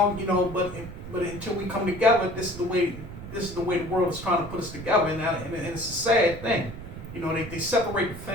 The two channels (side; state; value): right; noise; rumble, 11 dB below the sound